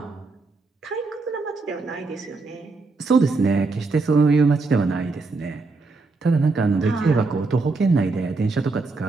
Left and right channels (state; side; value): quieter; left; 3.8 dB